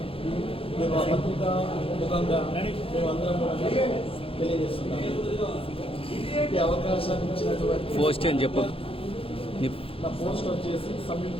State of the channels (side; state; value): right; late; 0.27 ms